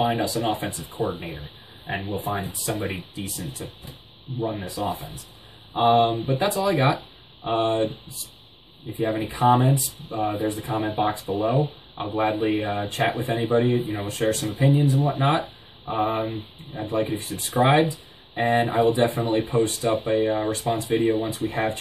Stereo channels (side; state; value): both; identical; correlation 1.00